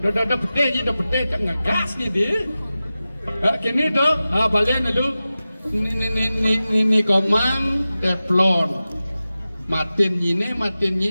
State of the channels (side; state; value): both; inverted; correlation -0.95